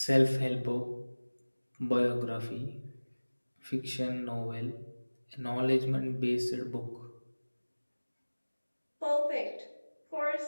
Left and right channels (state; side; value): inverted; both; correlation -1.00